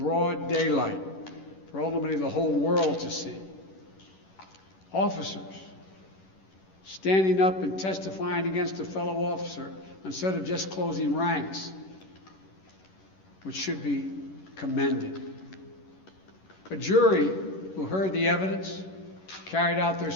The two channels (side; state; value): right; late; 11 ms